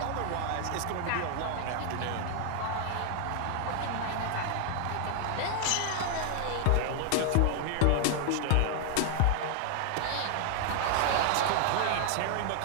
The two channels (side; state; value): both; different; correlation 0.00